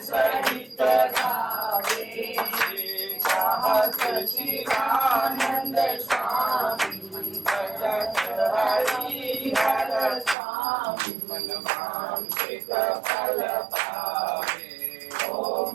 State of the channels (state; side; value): drops out; left; at 10.4 s